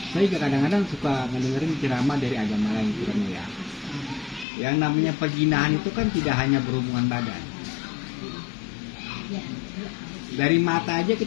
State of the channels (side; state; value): right; drops out; at 4.5 s